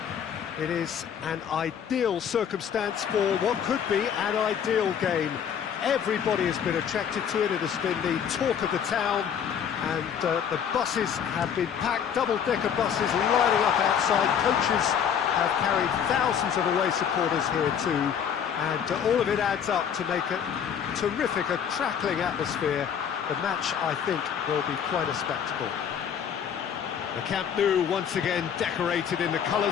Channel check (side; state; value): right; quieter; 8.1 dB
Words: It is an ideal circumstance for what could be an ideal game. Everybody has been attracted to it. It has been the talk of the town, and the buses have been packed, double-decker buses lining up outside. Coaches have carried thousands of away supporters here too, and all of it adds up to make a terrific, a crackling atmosphere. The match, I think, will be quite a spectacle. The Camp Nou once again decorated in the